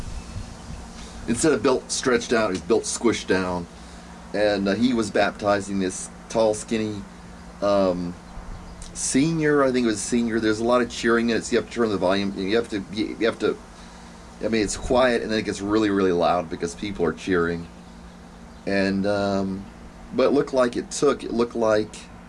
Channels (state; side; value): identical; both; correlation 1.00